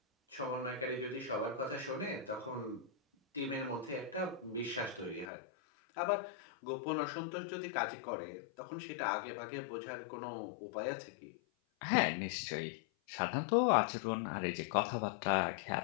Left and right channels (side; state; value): right; drops out; at 5.3 s